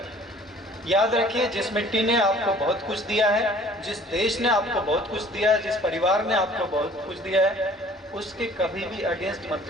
याद रखिए, जिस मिट्टी ने आपको बहुत कुछ दिया है, जिस देश ने आपको बहुत कुछ दिया है, जिस परिवार ने आपको बहुत कुछ दिया है, उसके कभी भी अगेंस्ट मत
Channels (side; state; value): both; normal; correlation 0.52